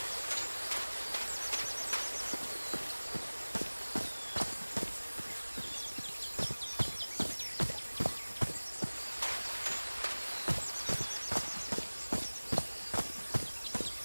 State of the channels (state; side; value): inverted; both; correlation -1.00